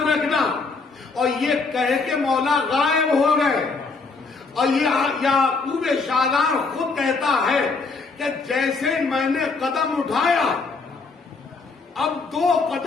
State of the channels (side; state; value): right; quieter; 4.2 dB